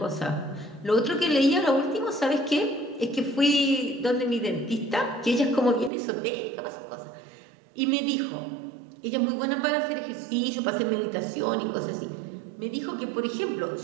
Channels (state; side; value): drops out; left; at 5.9 s